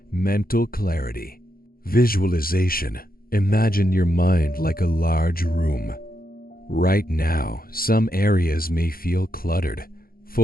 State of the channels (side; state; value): right; late; 0.43 ms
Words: Mental clarity. Visualization. Imagine your mind like a large room. Right now, some areas may feel cluttered,